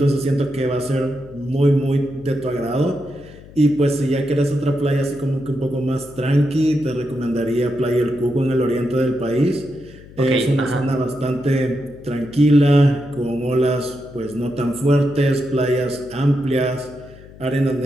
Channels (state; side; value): noise; left; hum, 20 dB below the sound